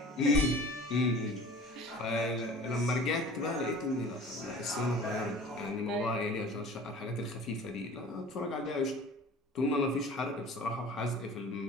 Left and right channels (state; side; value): normal; both; correlation 0.43